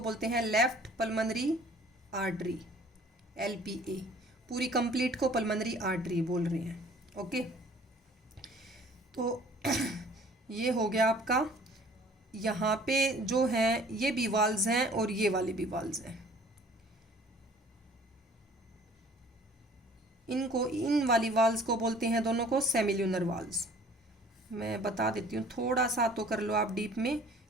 बोलते हैं लेफ्ट पल्मोनरी आर्टरी, LPA, पूरी कंप्लीट को पल्मोनरी आर्टरी बोल रहे हैं। ओके, तो ये हो गया आपका। यहाँ पे जो हैं ये भी वाल्स हैं और ये वाले भी वाल्स हैं। इनको, इन वाली वाल्स को बोलते हैं दोनों को सेमिल्यूनर वाल्स। मैं बता देती हूँ, थोड़ा सा तो कर लो आप डीप में,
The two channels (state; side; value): normal; both; correlation 0.52